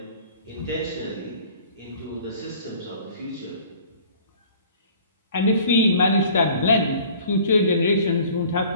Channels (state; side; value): inverted; both; correlation -0.50